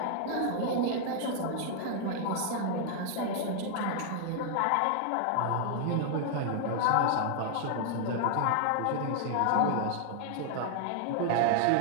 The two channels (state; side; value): different; both; correlation 0.00